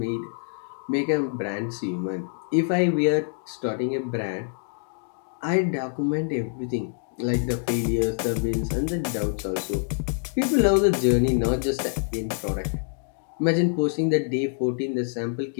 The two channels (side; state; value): right; silent; digital silence